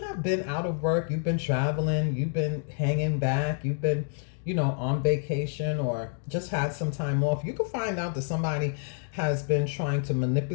been out of work, you've been traveling, you've been hanging back, you've been, you know, on vacation or just had some time off, you can find out that somebody has been trying to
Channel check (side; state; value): right; silent; 59 dB below the other